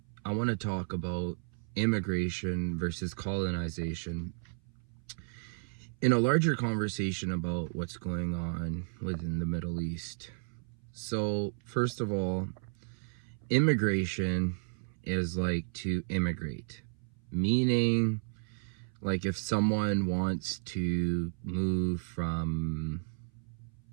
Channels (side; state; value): left; silent; 56 dB below the other